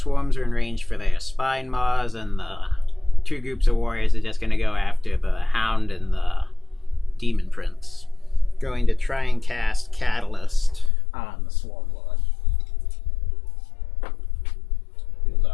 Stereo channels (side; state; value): right; drops out; at 10.9 s